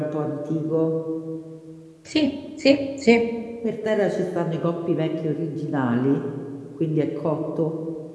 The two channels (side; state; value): both; identical; correlation 1.00